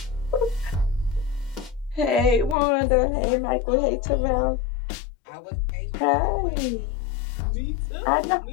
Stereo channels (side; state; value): right; drops out; at 2.6 s